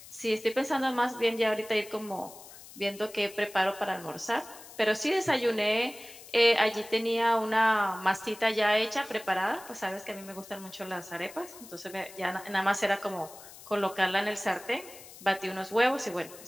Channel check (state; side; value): noise; left; hiss, 18 dB below the sound